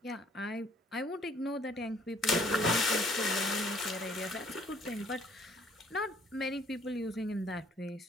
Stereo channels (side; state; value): both; normal; correlation 0.60